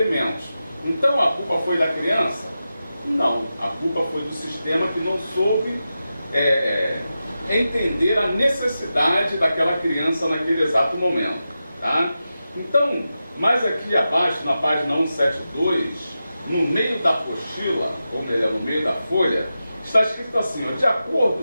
Então a culpa foi da criança? Não, a culpa foi do sistema que não soube entender a necessidade daquela criança naquele exato momento. Tá? Então, mais aqui abaixo, na página 172, no meio da apostila, ou melhor, no meio da folha, está escrito assim, ó, de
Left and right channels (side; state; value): both; inverted; correlation -0.91